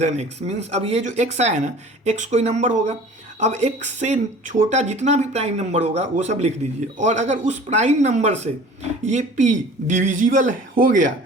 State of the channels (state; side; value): normal; both; correlation 0.45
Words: x। Means अब ये जो x आया ना, x कोई नंबर होगा। अब x से छोटा जितना भी प्राइम नंबर होगा वो सब लिख दीजिए, और अगर उस प्राइम नंबर से ये p डिविजिबल हो गया